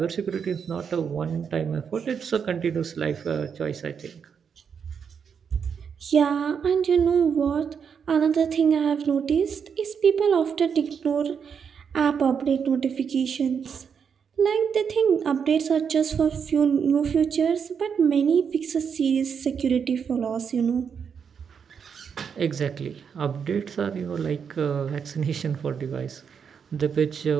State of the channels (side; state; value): left; quieter; 6.8 dB